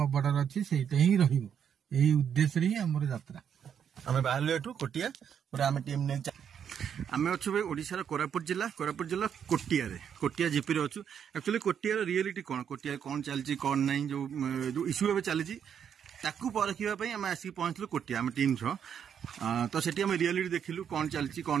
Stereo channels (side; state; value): left; quieter; 8.2 dB